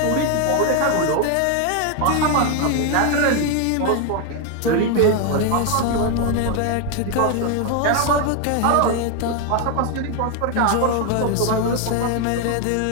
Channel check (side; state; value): both; different; correlation 0.01